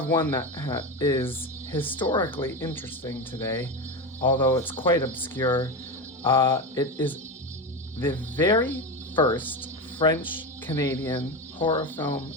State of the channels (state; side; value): normal; both; correlation 0.19